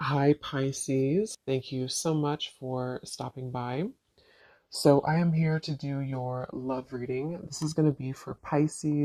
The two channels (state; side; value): identical; both; correlation 1.00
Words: Hi, Pisces. Thank you so much for stopping by. So, I am here to do your love reading. This is going to be for